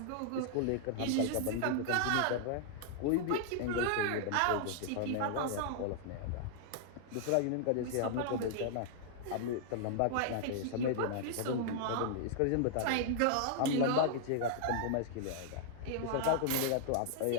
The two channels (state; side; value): different; both; correlation -0.01